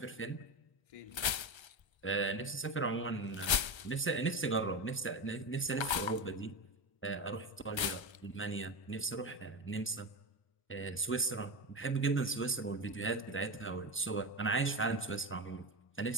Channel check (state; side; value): late; right; 1.3 ms